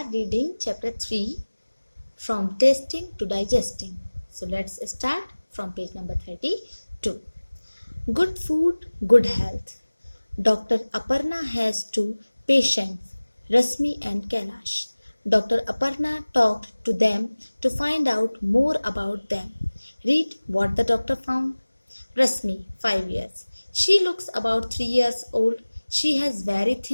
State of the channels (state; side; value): inverted; both; correlation -1.00